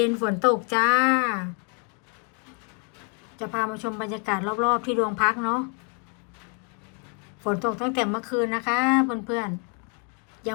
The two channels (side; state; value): right; quieter; 36.2 dB